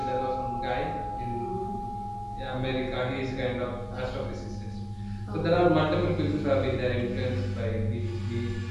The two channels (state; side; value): identical; both; correlation 1.00